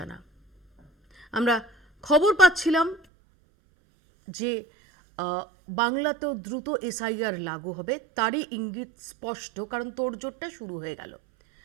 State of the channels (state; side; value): drops out; left; at 3.0 s